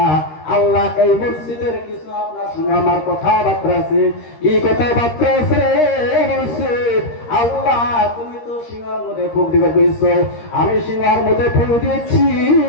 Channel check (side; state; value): right; late; 13 ms